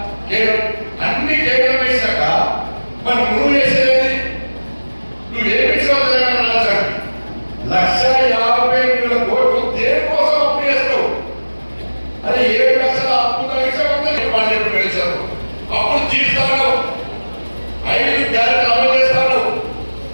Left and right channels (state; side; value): inverted; both; correlation -1.00